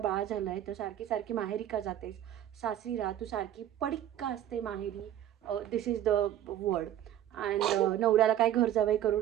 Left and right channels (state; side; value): quieter; left; 11.6 dB